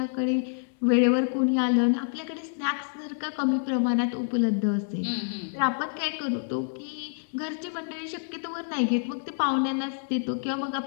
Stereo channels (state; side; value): silent; right; digital silence